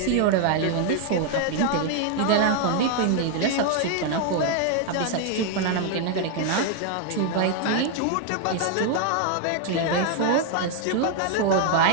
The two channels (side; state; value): both; different; correlation 0.00